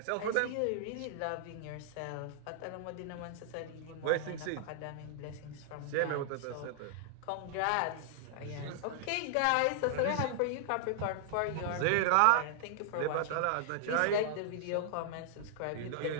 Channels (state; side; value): different; both; correlation -0.01